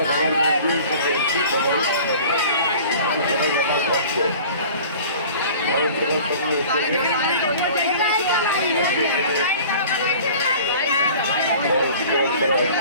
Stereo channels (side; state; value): both; inverted; correlation -0.44